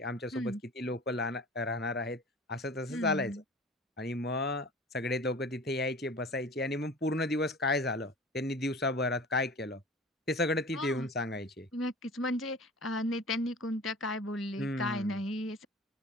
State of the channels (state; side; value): normal; both; correlation 0.40